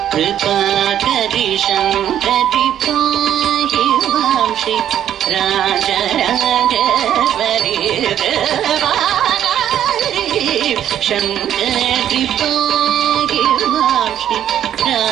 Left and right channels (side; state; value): left; quieter; 10.6 dB